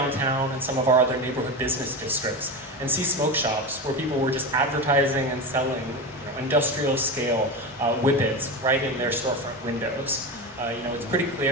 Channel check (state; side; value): normal; both; correlation 0.21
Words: and some of our other neighborhood business districts and see smoke shops where people were just advertising and selling industrial scale whippets right in their storefront windows. It's pretty